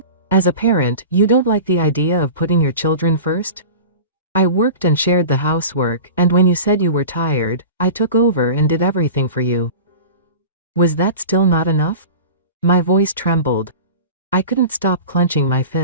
As a parent, you don't like the idea of putting your children first? I worked and shared the housework, and when you said you were tired, I took over and did everything for you. Was that still not enough? My voice trembled. I couldn't stop clenching my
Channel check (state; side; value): inverted; both; correlation -0.34